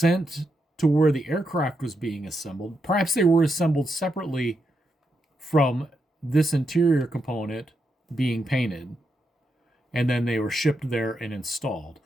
to where the aircraft was being assembled. Perhaps they were assembled separately from this interior component being painted, and then they were shipped there and installed.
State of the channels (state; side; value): normal; both; correlation 0.83